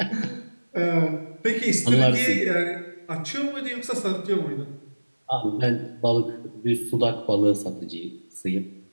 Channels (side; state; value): both; inverted; correlation -1.00